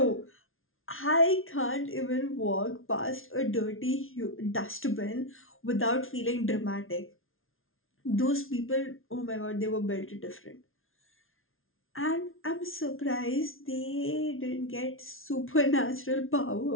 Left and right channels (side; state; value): right; late; 0.60 ms